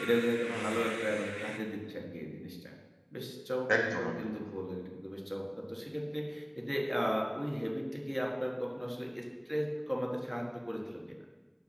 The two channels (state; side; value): identical; both; correlation 1.00